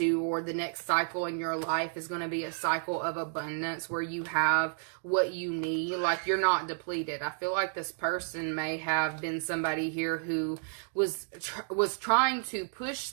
or the next cycle in your life is going to be a cycle of abundance where you have what you need. Like, you're not depleted. I feel like this person may have been somebody here who was trying to push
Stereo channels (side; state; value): left; silent; digital silence